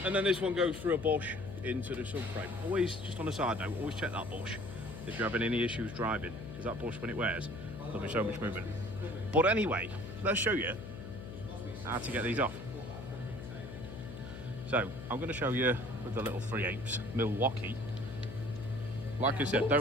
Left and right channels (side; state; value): left; noise; hum, 10 dB below the sound